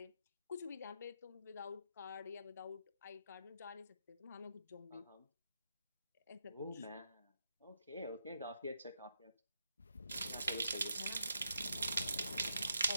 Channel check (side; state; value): both; inverted; correlation -0.81